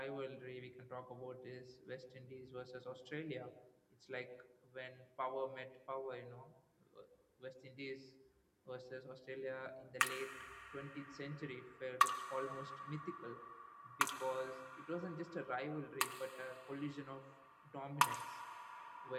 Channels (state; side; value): identical; both; correlation 1.00